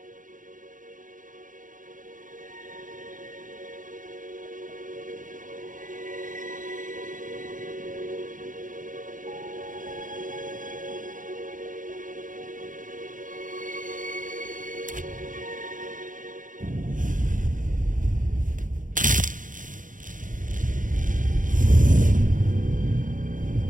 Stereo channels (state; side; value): late; left; 0.38 ms